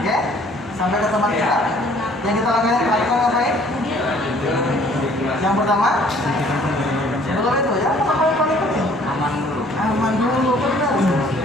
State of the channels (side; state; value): both; normal; correlation 0.57